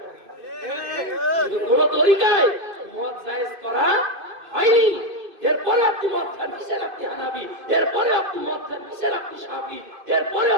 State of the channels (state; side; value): late; left; 2.5 ms